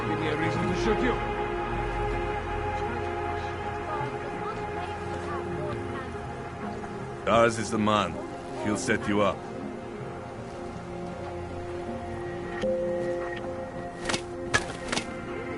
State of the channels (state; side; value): identical; both; correlation 1.00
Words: give me a reason to shoot you. Stars is the man. She'll set you up.